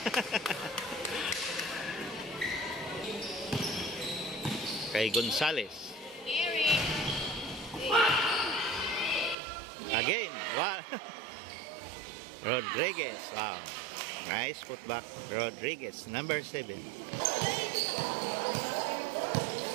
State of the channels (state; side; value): drops out; left; at 9.3 s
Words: Kay Gonzales. Again, wow. Rodriguez, wow. Nice putback, Rodriguez, number 7.